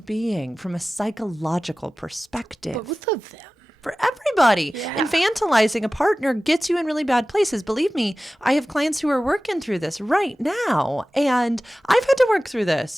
from a psychological perspective. Both of them. For everybody. Yeah. Infantilizing a partner gets you in really bad places. Believe me, I have clients who are working through this right now. And I've had to work through this.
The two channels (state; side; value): normal; both; correlation 0.96